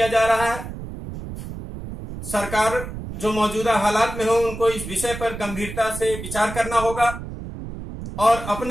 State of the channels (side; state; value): right; noise; rumble, 9 dB below the sound